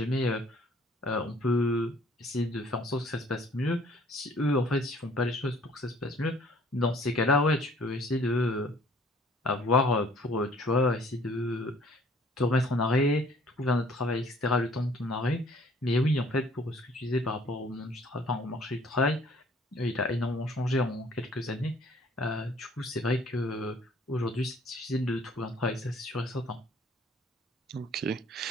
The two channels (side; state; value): both; normal; correlation 0.57